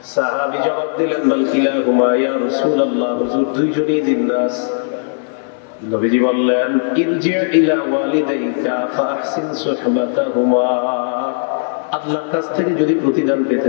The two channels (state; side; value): silent; right; 68 dB below the other